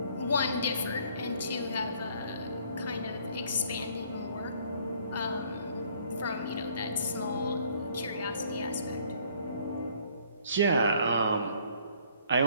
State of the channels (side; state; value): both; inverted; correlation -0.60